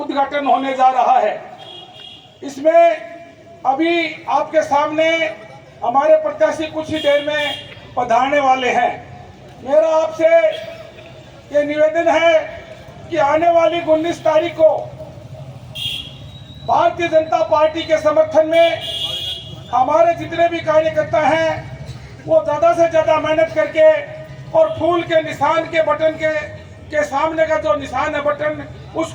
होने जा रहा है। इसमें अभी आपके सामने हमारे प्रत्याशी कुछ ही देर में पधारने वाले हैं। मेरा आपसे ये निवेदन है कि आने वाली 19 तारीख को भारतीय जनता पार्टी के समर्थन में हमारे जितने भी कार्यकर्ता हैं वो ज़्यादा से ज़्यादा मेहनत करके और फूल के निशान के बटन के सामने का जो निशान है बटन,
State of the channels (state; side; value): identical; both; correlation 1.00